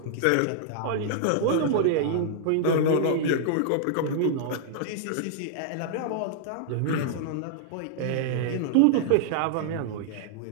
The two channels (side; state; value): both; different; correlation -0.01